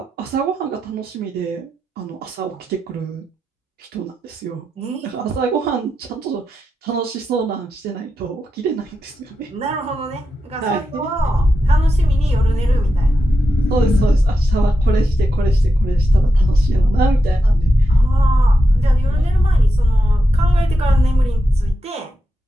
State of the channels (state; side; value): normal; both; correlation 0.88